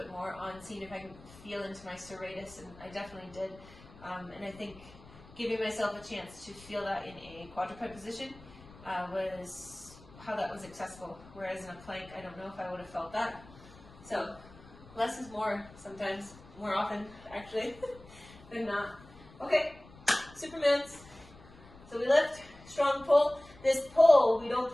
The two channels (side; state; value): left; noise; rumble, 21 dB below the sound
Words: more on seeing if I can feel into my serratus, and I definitely did. And I think giving myself a chance to feel that in a quadruped position was how that was accessible. Whereas in a plank, I don't know if I would have felt that. So less is more sometimes, more often actually, than not. Okay, Supermans. So we lift, strong pull. This pull, we